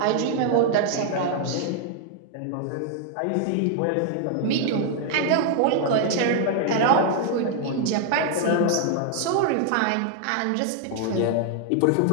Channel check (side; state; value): both; different; correlation 0.00